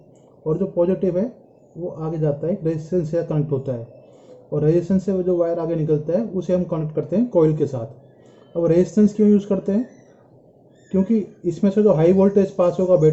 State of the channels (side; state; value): both; identical; correlation 1.00